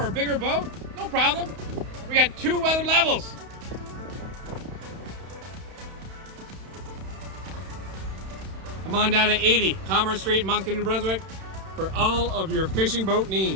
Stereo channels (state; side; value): late; left; 31 ms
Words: a bigger boat? No problem. We got 2 weather levels. Come on down to 80 Commerce Street, Moncton, New Brunswick for all of your fishing boat